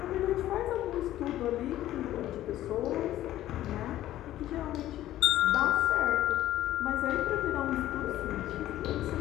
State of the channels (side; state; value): right; quieter; 13.7 dB